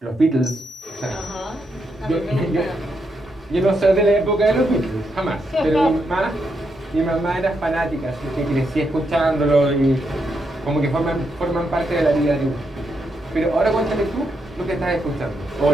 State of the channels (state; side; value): normal; both; correlation 0.81